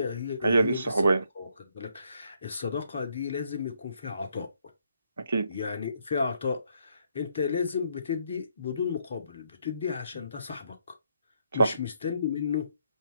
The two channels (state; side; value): inverted; both; correlation -0.73